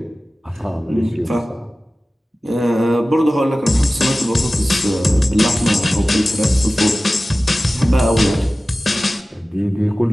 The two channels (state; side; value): normal; both; correlation 0.96